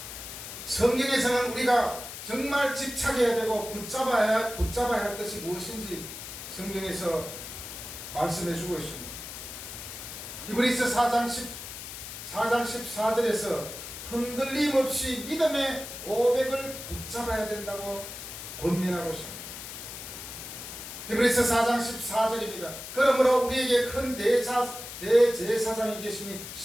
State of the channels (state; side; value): noise; left; hiss, 10 dB below the sound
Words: 성경에서는 우리가 정말 집착해야 되고 붙잡아야 할 것이 무엇인지 성경에서 말씀해 주고 있습니다. 히브리서 4장 14절에서 흔들림 없이 믿음의 고백을 붙잡아야 된다고 권면하고 있습니다. 히브리서 4장 14절입니다. 그러므로 우리에게 큰 대제사장이 계시니